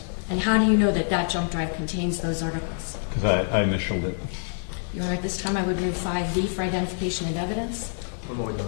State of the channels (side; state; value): right; silent; digital silence